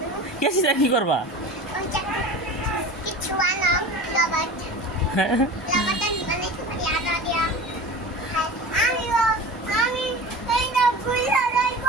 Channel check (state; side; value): normal; both; correlation 0.35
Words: কেছিটা কি করবা?